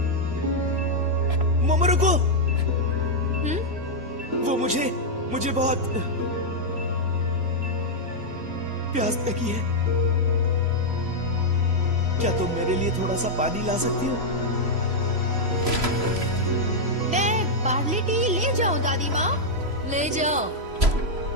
मोमो रुको। वो मुझे बहुत प्यास लगी है। क्या तुम मेरे लिए थोड़ा सा पानी ला सकती हो? मैं बार्ली टी ले जाओ दादी माँ। ले जाओ।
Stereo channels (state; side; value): late; left; 3.0 ms